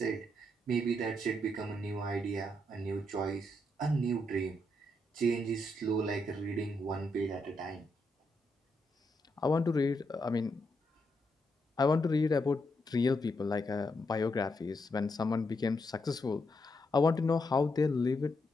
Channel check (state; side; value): normal; both; correlation 0.80